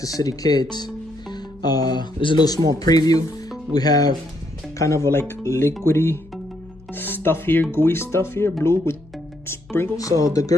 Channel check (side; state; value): left; noise; hum, 25 dB below the sound